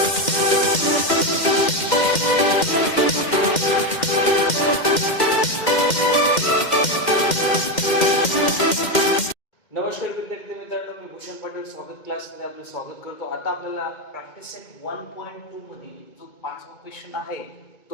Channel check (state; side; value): late; right; 2.1 ms